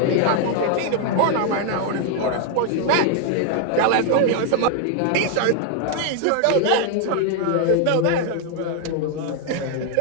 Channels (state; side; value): different; both; correlation 0.00